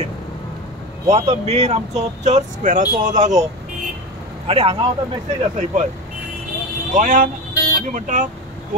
हो आतां मेन आमचो चर्च स्क्वेराचो हो जागो. आनी हांगा आतां मेसेज आसा ही पळय, गोंयान आमी म्हणटा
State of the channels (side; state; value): both; normal; correlation 0.23